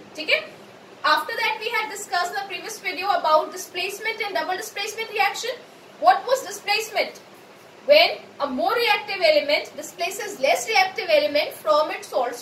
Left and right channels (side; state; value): both; identical; correlation 1.00